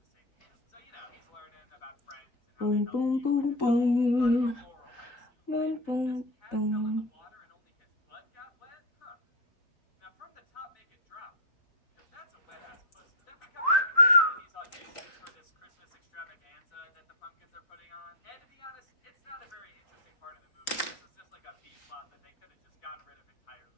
Boom, boom, boom, boom. Boom, boom, boom.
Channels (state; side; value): late; right; 3.8 ms